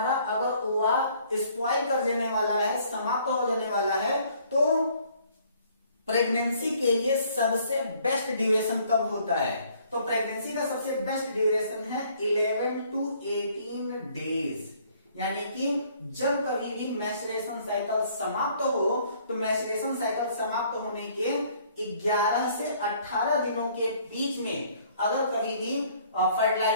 अगर ओवा स्पॉइल कर देने वाला है, समाप्त हो जाने वाला है, तो प्रेगनेंसी के लिए सबसे बेस्ट ड्यूरेशन कब होता है, तो प्रेगनेंसी का सबसे बेस्ट ड्यूरेशन है 11 to 18 डेज। यानी कि जब कभी भी मैच्योरेशन साइकिल समाप्त हो, तो मैच्योरेशन साइकिल समाप्त होने के 11 से 18 दिनों के बीच में अगर कभी भी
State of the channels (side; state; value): both; inverted; correlation -0.61